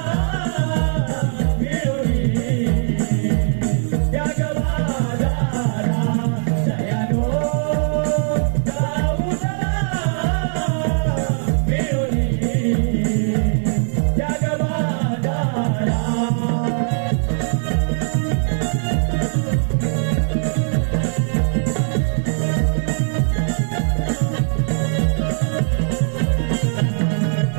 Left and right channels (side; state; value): left; silent; digital silence